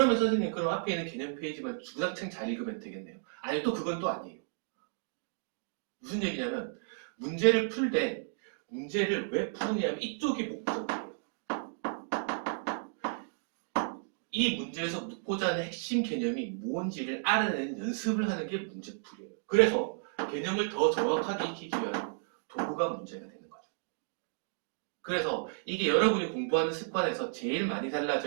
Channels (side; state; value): left; silent; digital silence